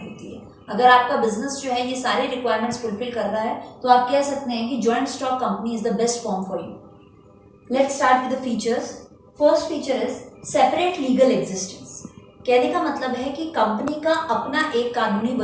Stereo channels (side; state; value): both; identical; correlation 1.00